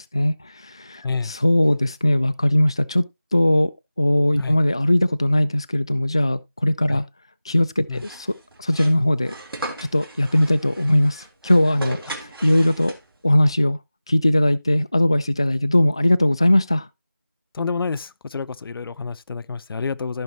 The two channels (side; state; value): both; inverted; correlation -0.97